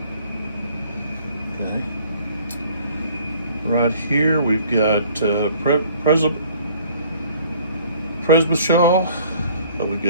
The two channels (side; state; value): both; inverted; correlation -0.55